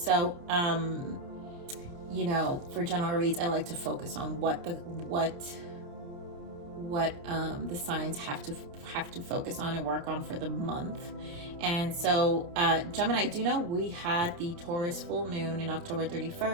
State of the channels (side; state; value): left; late; 29 ms